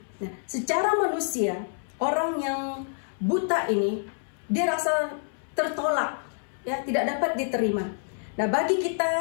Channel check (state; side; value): silent; right; 60 dB below the other